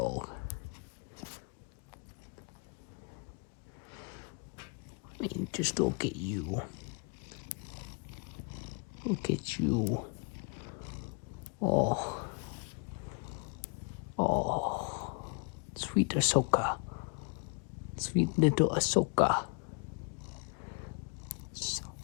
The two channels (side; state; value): right; quieter; 34.8 dB